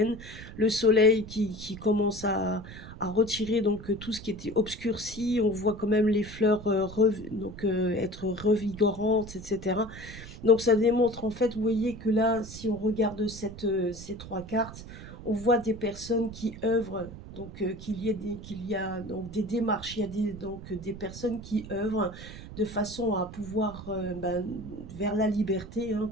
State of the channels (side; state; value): right; noise; rumble, 13 dB below the sound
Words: le soleil qui commence à retirer donc tout ce qui était obscurci. On voit quand même les fleurs être revigorantes, etc. Donc ça démontre en fait, vous voyez que là, si on regarde ces trois cartes, on voit des personnes qui œuvrent, donc qu'il y a donc des démarches, il y a donc des personnes qui œuvrent de façon à pouvoir vers la liberté, hein.